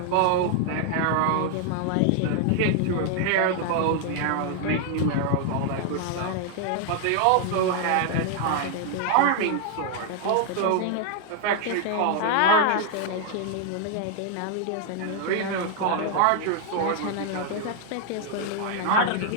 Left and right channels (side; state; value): both; different; correlation 0.00